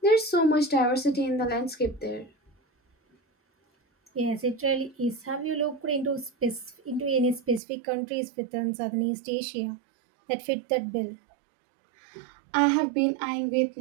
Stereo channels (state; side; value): drops out; left; at 7.6 s